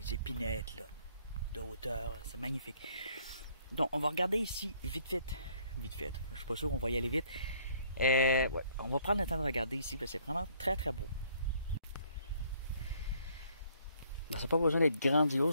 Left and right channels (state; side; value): inverted; both; correlation -0.64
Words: épinettes là, de hauteur. C'est magnifique. Donc, on va regarder ici, vite fait. Vite fait. Je suis pas sûr qu'on va y aller vite. Ouais, on va prendre le temps de regarder ici, parce que c'est vraiment très, très beau. Ça n'a pas besoin d'être